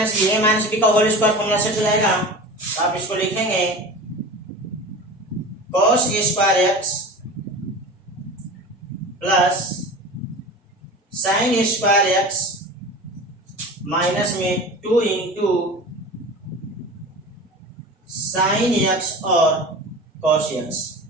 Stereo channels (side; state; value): both; normal; correlation 0.34